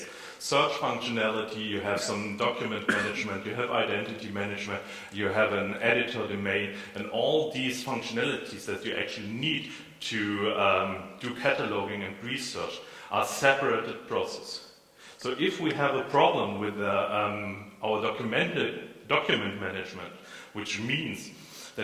search functionality, you have some document management, you have identity management, you have an editor domain, and all these functionalities that you actually need to do cataloging and research are separated processes. So if we have a problem with our document management, which means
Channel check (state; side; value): identical; both; correlation 1.00